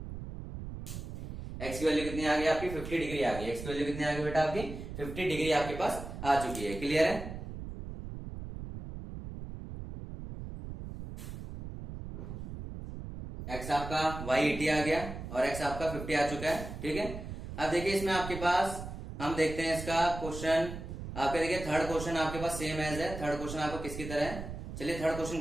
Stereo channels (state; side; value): noise; right; rumble, 9 dB below the sound